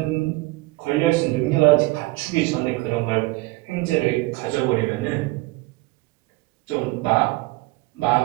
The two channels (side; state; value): left; quieter; 22.2 dB